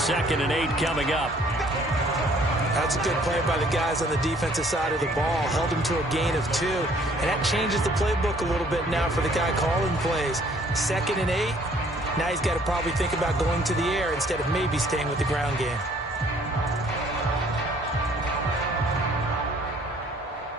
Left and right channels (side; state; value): both; normal; correlation 0.60